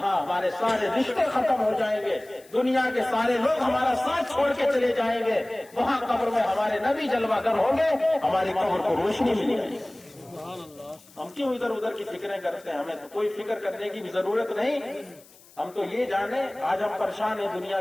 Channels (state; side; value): noise; left; hiss, 25 dB below the sound